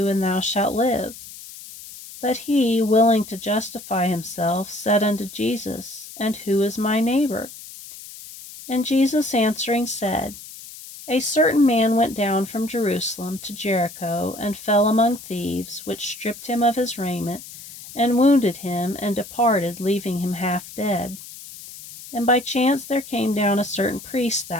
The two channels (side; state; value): left; noise; hiss, 15 dB below the sound